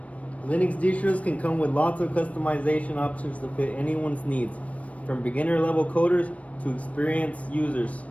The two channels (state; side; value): late; right; 0.066 ms